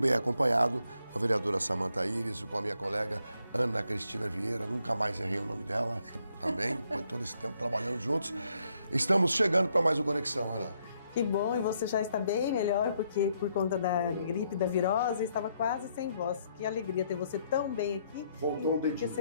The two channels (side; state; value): both; inverted; correlation -0.73